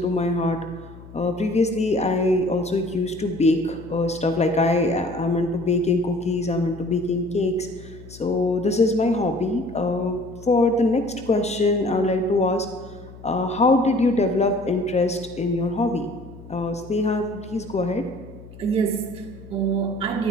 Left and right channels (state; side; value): noise; left; hum, 18 dB below the sound